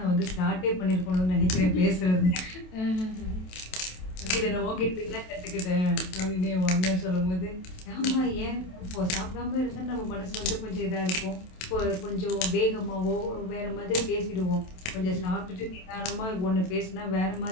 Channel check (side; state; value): right; late; 27 ms